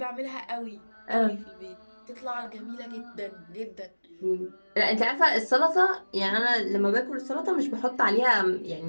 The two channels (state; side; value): inverted; both; correlation -1.00